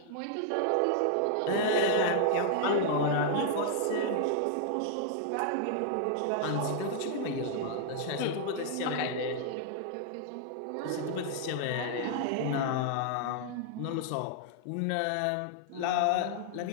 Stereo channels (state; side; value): different; both; correlation -0.01